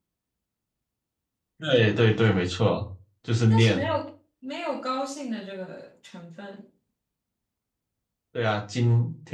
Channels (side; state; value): both; identical; correlation 1.00